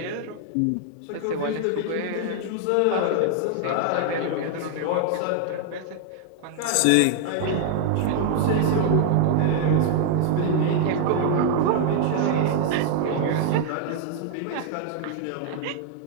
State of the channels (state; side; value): different; both; correlation 0.00